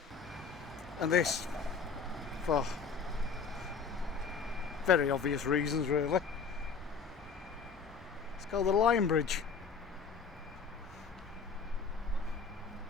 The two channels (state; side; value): quieter; right; 5.4 dB